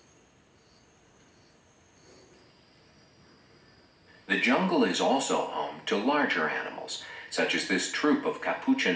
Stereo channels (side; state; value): both; identical; correlation 1.00